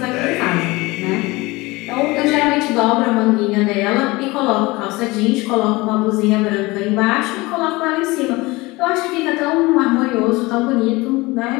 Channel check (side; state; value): right; quieter; 22.3 dB